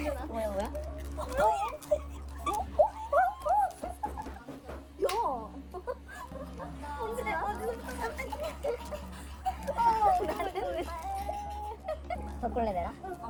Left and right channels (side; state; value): both; identical; correlation 1.00